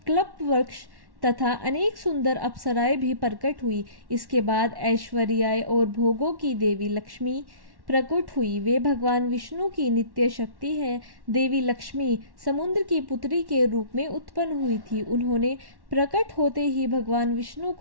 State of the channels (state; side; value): late; left; 1.1 ms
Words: वृक्ष तथा अनेक सुंदर अप्सराएं भी प्रकट हुई। इसके बाद ऐश्वर्य और भोगों की देवी लक्ष्मी प्रकट हुई। वे भगवान विष्णु की नित्य शक्ति है। देवी लक्ष्मी समुद्र की पुत्री के रूप में उत्पन्न हुई थी। उन्होंने प्रकट होते ही भगवान विष्णु